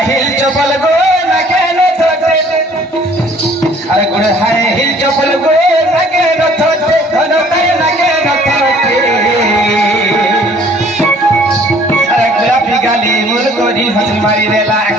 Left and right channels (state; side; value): normal; both; correlation 0.56